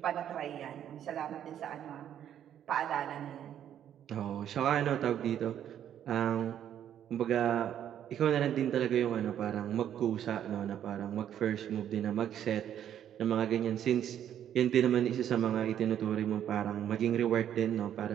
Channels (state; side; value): quieter; left; 10.1 dB